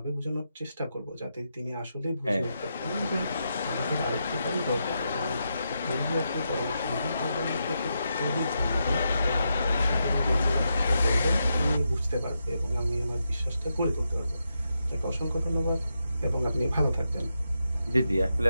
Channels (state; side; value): inverted; both; correlation -0.85